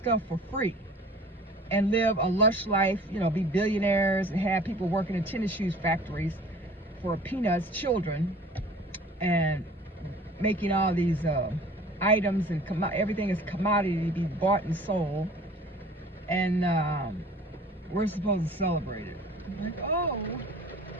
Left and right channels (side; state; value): both; normal; correlation 0.47